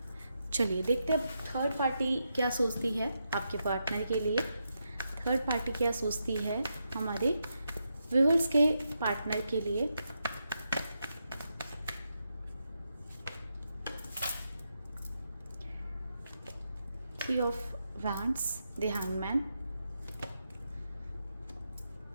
चलिए देखते हैं थर्ड पार्टी क्या सोचती है आपके पार्टनर के लिए। थर्ड पार्टी क्या सोचती है हमारे व्यूअर्स के पार्टनर के लिए। Three of wands, the hangman,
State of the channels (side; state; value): both; inverted; correlation -0.84